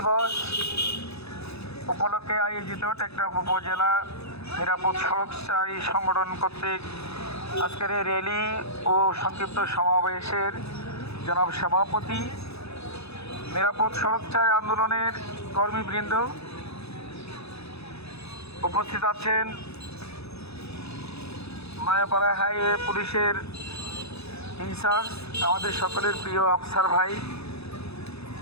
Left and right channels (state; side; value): late; right; 0.79 ms